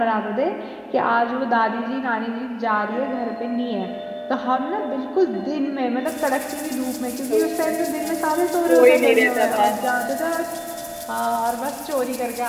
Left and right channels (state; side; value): identical; both; correlation 1.00